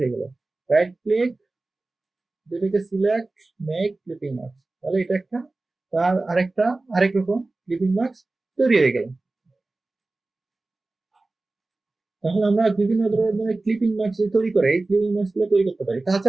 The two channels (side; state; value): left; quieter; 3.2 dB